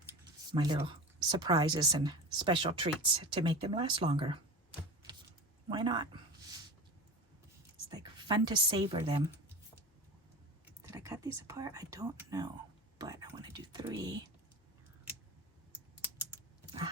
little surprises and special treats to make them last longer. Why not? It's like fun to savor them. Did I cut these apart? I don't know, but I want to do 3.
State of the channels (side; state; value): both; normal; correlation 0.31